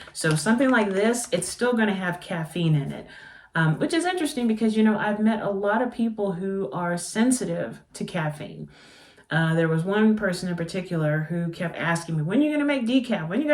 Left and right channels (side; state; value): both; identical; correlation 1.00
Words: So something like this, it's still going to have caffeine in it, which is interesting because, I've met a lot of people who are sensitive to caffeine. There was one person in particular who kept asking me, when are you going to make decaf? When are you